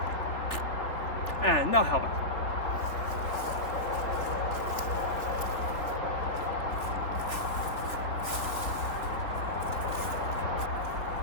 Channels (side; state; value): right; late; 3.5 ms